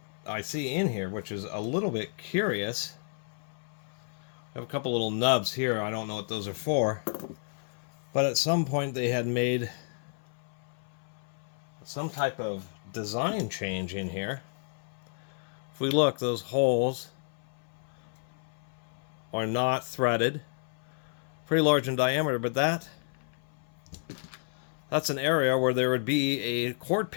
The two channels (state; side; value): silent; right; 57 dB below the other